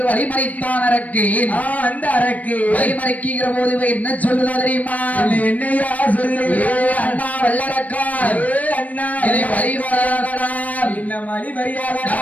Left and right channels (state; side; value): late; right; 0.073 ms